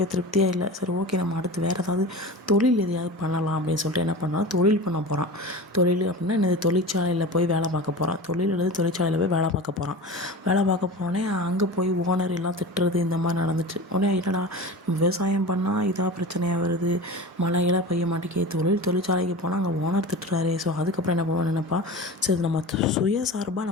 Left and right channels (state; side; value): normal; both; correlation 0.32